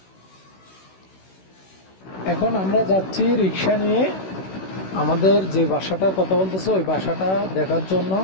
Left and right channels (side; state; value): right; late; 16 ms